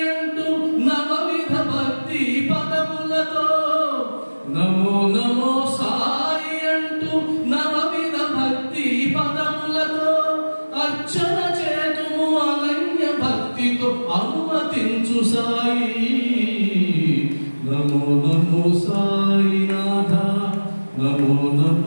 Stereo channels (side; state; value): both; inverted; correlation -1.00